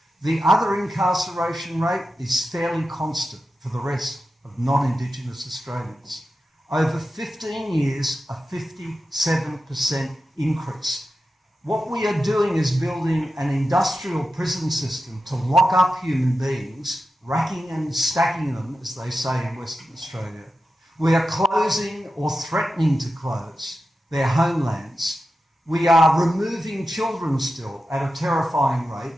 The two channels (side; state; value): both; normal; correlation 0.91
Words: The other incarceration rate is fairly constant for the rest of non-Indigenous Australians. Over 15 years, a 57% increase. What we are doing is building an industrial prison system to lock up human beings, racking and stacking them, as they say in Western Australia. We are closing or threatening to close their homelands. We are removing children still at a terrifying rate.